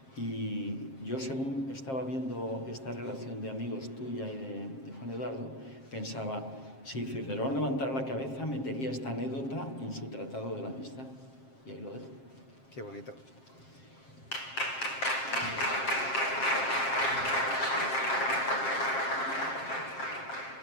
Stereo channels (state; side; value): late; right; 7.5 ms